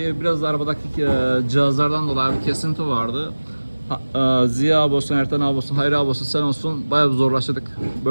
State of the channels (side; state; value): both; inverted; correlation -1.00